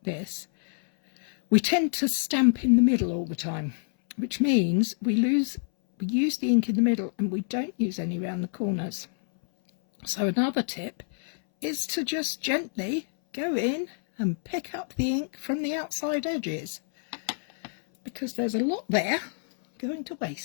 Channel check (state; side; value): silent; right; 60 dB below the other